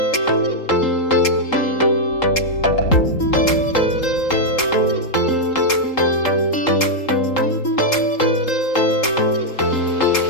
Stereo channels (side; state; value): right; late; 3.8 ms